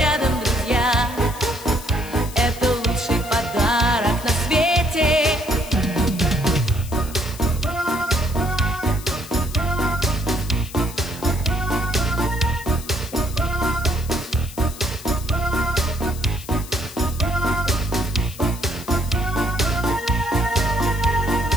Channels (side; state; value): left; noise; hiss, 15 dB below the sound